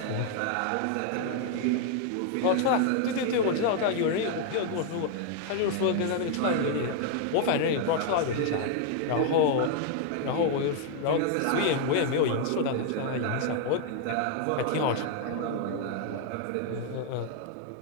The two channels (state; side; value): different; both; correlation 0.00